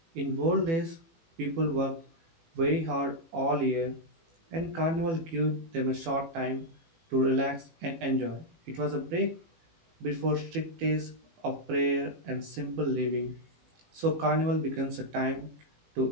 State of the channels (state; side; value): late; left; 18 ms